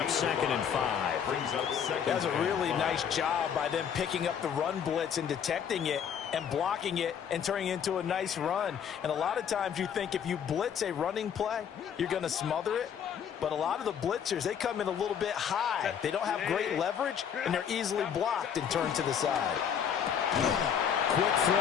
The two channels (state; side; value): quieter; right; 8.1 dB